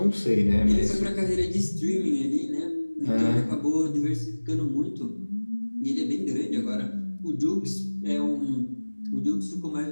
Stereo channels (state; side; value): inverted; both; correlation -1.00